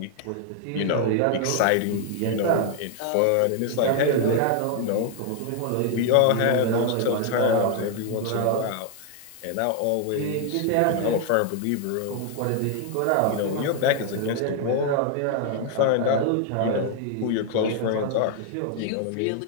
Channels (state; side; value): different; both; correlation 0.00